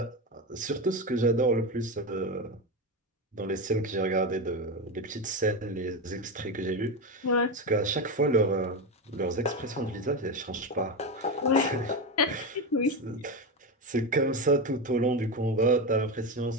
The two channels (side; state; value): both; normal; correlation 0.15